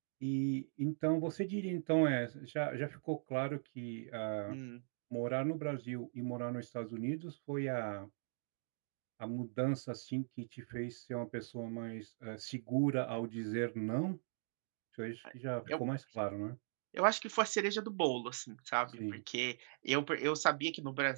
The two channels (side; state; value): left; silent; digital silence